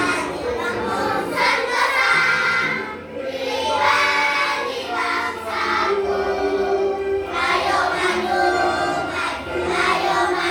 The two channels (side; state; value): both; identical; correlation 1.00